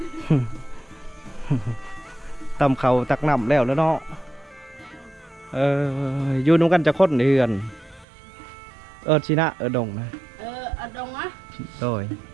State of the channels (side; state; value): left; drops out; at 8.1 s